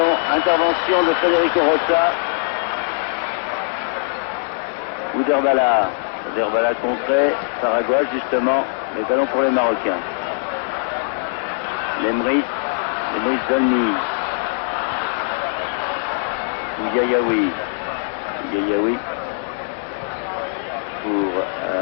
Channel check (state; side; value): silent; right; digital silence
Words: intervention de Federico Rossa. Bouder-Bala contré par Aguas justement. Les ballons pour les Marocains. Lemris Dolmy. Yayaoui. Yayaoui pour